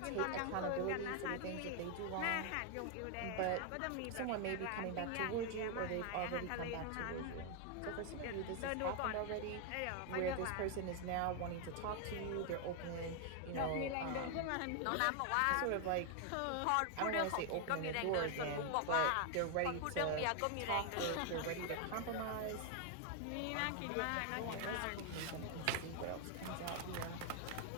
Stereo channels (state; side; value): different; both; correlation 0.00